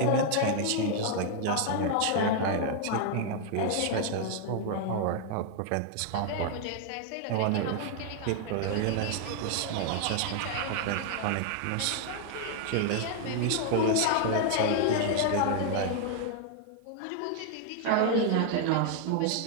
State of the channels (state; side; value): different; both; correlation 0.00